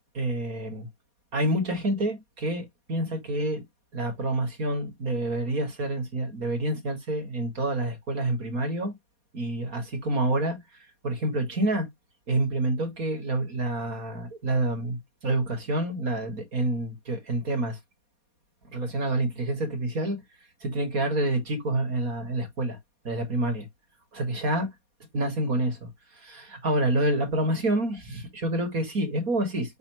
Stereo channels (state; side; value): late; left; 4.2 ms